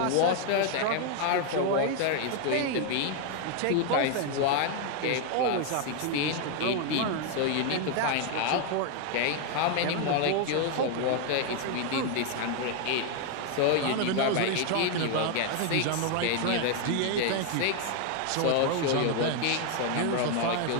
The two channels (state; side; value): different; both; correlation 0.01